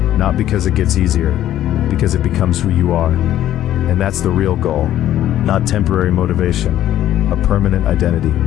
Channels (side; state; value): right; quieter; 12.4 dB